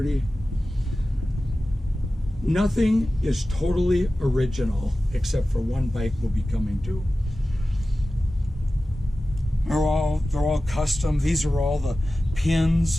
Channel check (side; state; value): both; normal; correlation 0.95